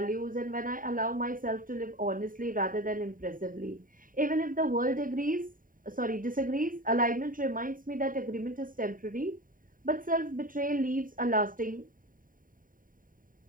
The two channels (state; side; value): late; left; 0.40 ms